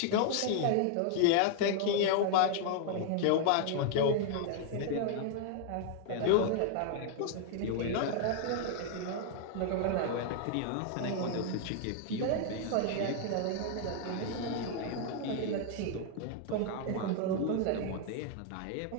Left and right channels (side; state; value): both; different; correlation 0.00